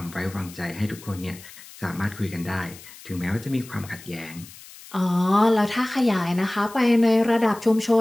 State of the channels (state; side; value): noise; left; hiss, 19 dB below the sound